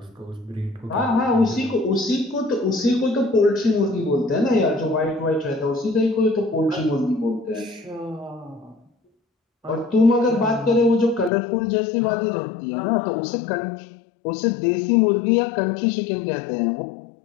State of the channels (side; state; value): right; drops out; at 11.3 s